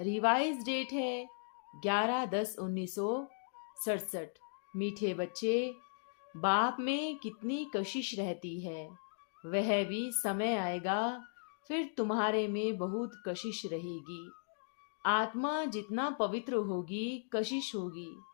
डेट है 11/10/1967। मीठे बच्चे, बाप में कितनी कशिश रहती है, वह भी समय आएगा फिर तुम्हारे में बहुत कशिश रहेगी। आत्मा जितना पवित्र होगी कशिश होगी।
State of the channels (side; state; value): right; silent; digital silence